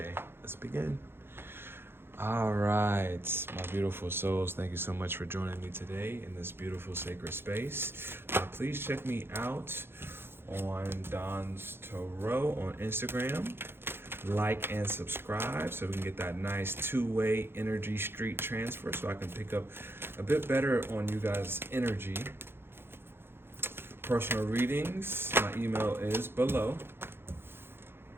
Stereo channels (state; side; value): late; left; 0.11 ms